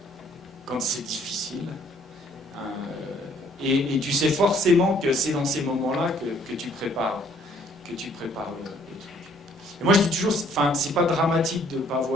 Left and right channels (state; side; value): normal; both; correlation 0.62